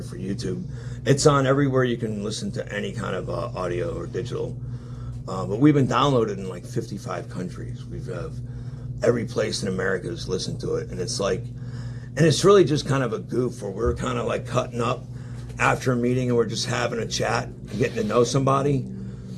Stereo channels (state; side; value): identical; both; correlation 1.00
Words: for YouTube. It's on everywhere you can listen to any kind of audio or digital. But we've been downloaded in like 55 countries. We've every place in America has listened to it. And it's like, and it's really just kind of a goof where we're kind of like cutting up after a meeting and we're just having a chat and getting to know somebody.